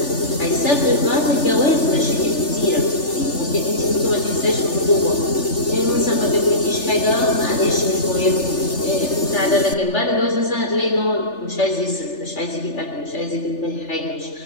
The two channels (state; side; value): late; right; 3.4 ms